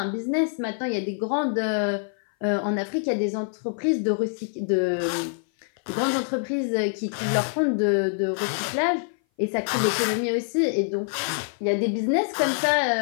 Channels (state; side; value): silent; right; 57 dB below the other